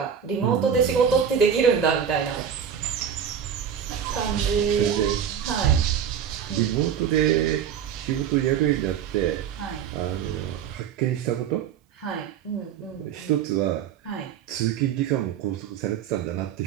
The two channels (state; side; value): quieter; left; 8.2 dB